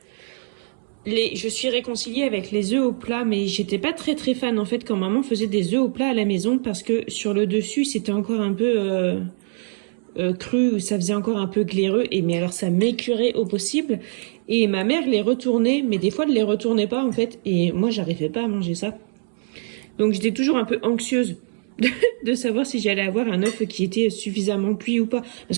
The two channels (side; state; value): left; silent; 63 dB below the other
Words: Je suis réconciliée avec les œufs au plat, mais j'étais pas très fan en fait quand maman faisait des œufs au plat à la maison parce que sur le dessus c'était encore un peu cru, ça faisait encore un peu glaireux, mais alors ça m'écurait au possible. Et ma mère les retournait, mais des fois elle les retournait pas en fait, et moi j'arrivais pas à manger ça. Donc j'étais toujours un peu anxieuse de savoir si j'allais avoir un œuf qui était suffisamment cuit ou pas.